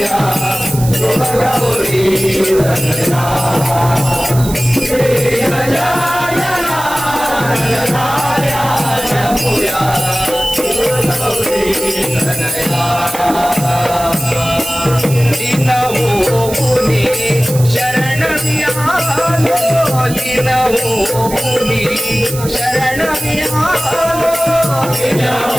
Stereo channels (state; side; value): noise; right; hiss, 11 dB below the sound